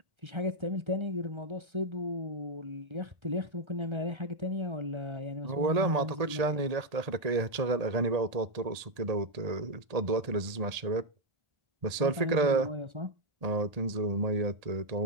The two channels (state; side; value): late; left; 1.8 ms